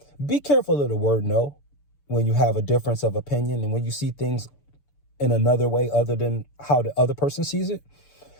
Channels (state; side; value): late; right; 6.9 ms